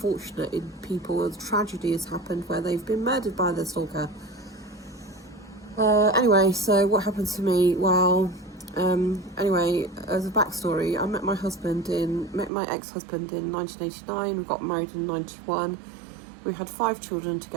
people. A tragedy has happened where they've been murdered by their stalker. Anyway, so what happened to me? Well, anyway, as a backstory, I met my ex-husband in 1989. We got married in 91. We had 5 children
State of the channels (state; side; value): drops out; left; at 12.5 s